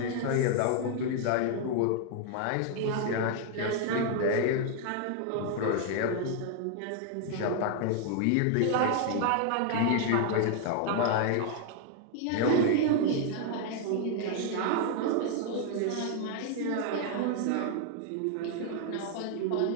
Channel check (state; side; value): different; both; correlation 0.00